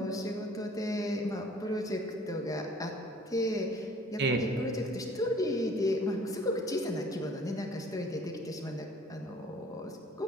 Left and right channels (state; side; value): normal; both; correlation 0.54